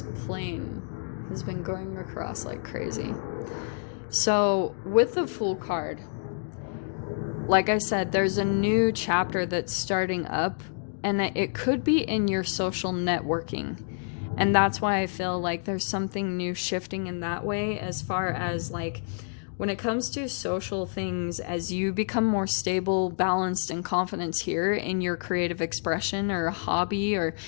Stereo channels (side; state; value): right; silent; digital silence